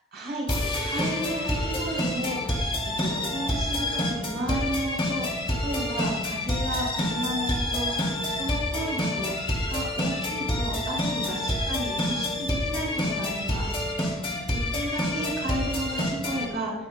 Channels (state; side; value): normal; both; correlation 0.53